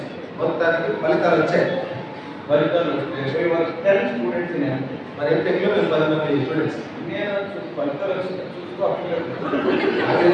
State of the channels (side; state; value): both; identical; correlation 1.00